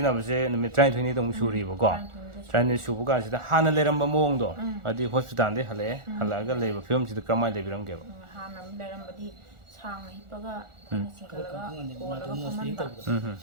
ꯅꯨꯃꯤꯠ 12ꯅꯤꯗ ꯑꯃꯨꯛ ꯁꯨꯔꯤꯕꯀꯣ 12ꯅꯤ ꯁꯨꯕ ꯀꯥꯟꯁꯤꯗ ꯍꯥꯟꯅ ꯂꯩꯔꯝꯕ ꯃꯑꯣꯡꯗꯣ ꯍꯥꯏꯗꯤ ꯍꯣꯁꯄꯤꯇꯥꯜꯗꯩ ꯍꯜꯂꯛꯑꯒ ꯂꯩꯕ ꯐꯤꯕꯝꯁꯤꯗ ꯀꯔꯝꯍꯥꯏꯅ ꯂꯩꯕꯤꯔꯝꯒꯦꯕ ꯍꯥꯟꯅ ꯂꯩꯔꯝꯕꯗꯤ ꯁꯥꯡꯅ ꯍꯤꯞꯄꯒ ꯑꯩꯈꯣꯏꯅ ꯆꯤꯡꯈꯠꯂꯒ ꯀꯣꯜꯂꯒ ꯐꯝꯍꯟꯕ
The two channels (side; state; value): left; late; 1.4 ms